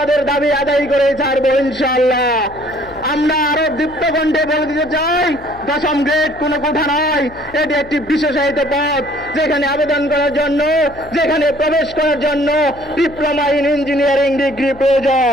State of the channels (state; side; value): noise; left; hum, 20 dB below the sound